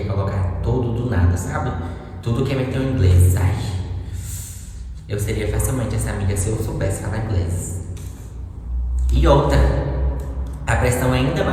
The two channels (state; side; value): identical; both; correlation 1.00